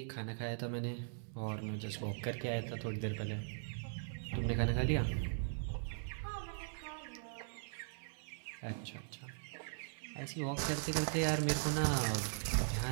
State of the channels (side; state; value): left; silent; digital silence